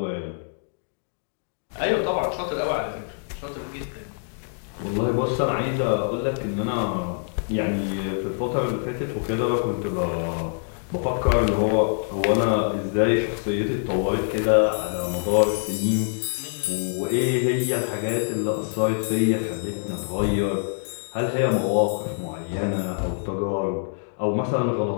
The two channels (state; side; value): silent; right; digital silence